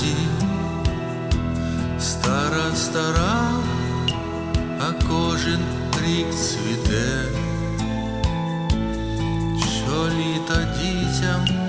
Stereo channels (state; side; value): identical; both; correlation 1.00